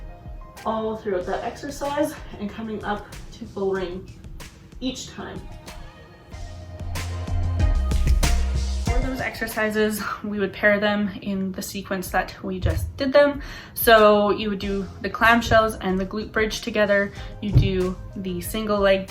all throughout that exercise and coming up to full range each time. For those exercises, we would pair them in the sequence that we just did them. So you would do the clamshells and the glute bridge together. You do the single leg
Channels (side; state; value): both; identical; correlation 1.00